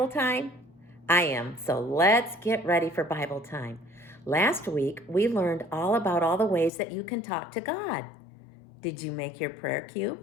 time? I am, so let's get ready for Bible time. Last week, we learned all about all the ways that you can talk to God. Did you make your prayer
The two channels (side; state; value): right; drops out; at 6.7 s